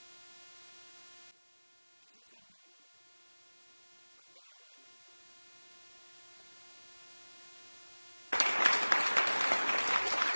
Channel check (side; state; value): both; inverted; correlation -1.00